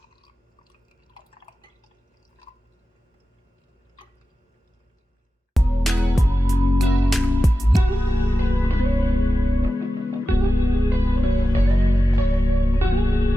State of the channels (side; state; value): both; normal; correlation 0.92